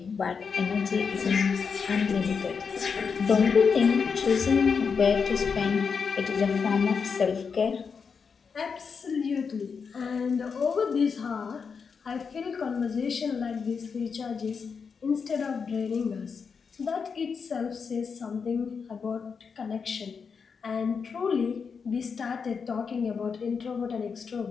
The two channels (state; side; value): quieter; right; 5.8 dB